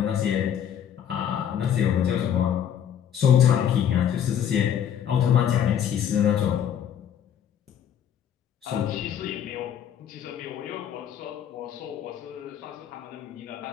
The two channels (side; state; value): right; quieter; 9.3 dB